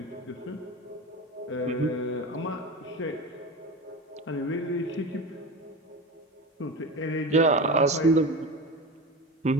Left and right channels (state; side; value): normal; both; correlation 0.26